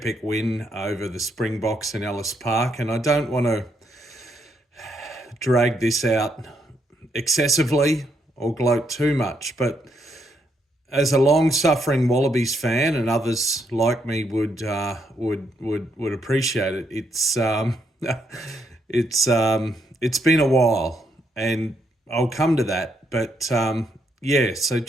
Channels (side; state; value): both; normal; correlation 0.76